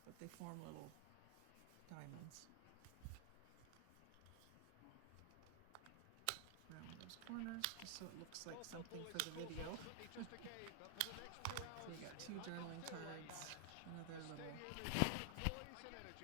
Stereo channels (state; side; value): different; both; correlation 0.00